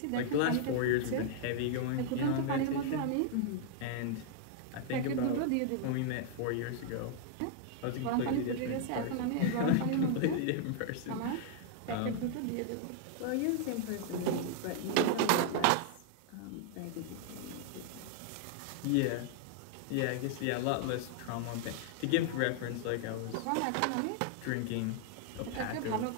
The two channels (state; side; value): different; both; correlation 0.00